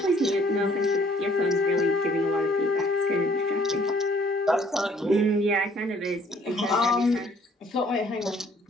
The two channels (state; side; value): normal; both; correlation 0.61